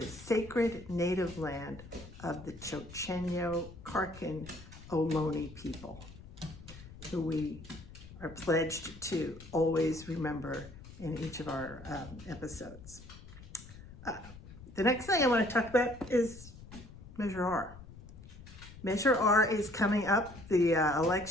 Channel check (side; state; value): left; noise; rumble, 17 dB below the sound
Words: sacred native land of the Chochenyo Karkin Ohlone people, who we are pledged to always remember in each of our episodes. The next thing I want to talk about is Measure R. Measure R is coming up. The